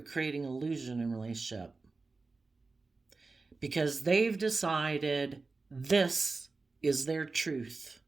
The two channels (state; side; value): quieter; left; 3.9 dB